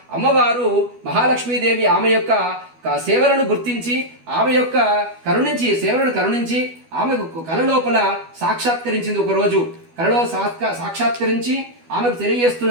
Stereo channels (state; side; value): late; left; 12 ms